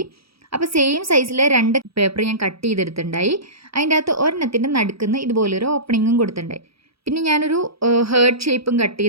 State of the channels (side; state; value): left; late; 0.76 ms